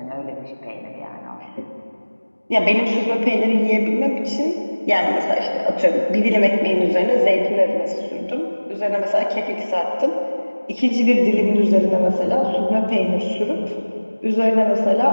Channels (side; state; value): both; inverted; correlation -1.00